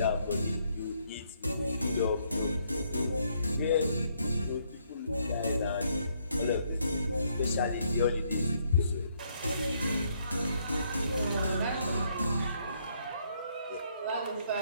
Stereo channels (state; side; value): inverted; both; correlation -0.71